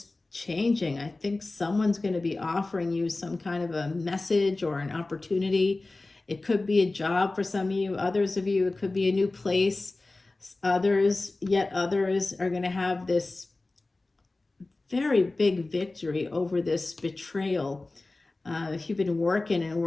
changing. I think someone's going to be offering you some kind of a message or an opportunity. It could be a job for some of you. Others of you, it could be a new place. Yet others are going to have this very big victory over this betrayal. If you've been working and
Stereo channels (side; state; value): right; quieter; 3.2 dB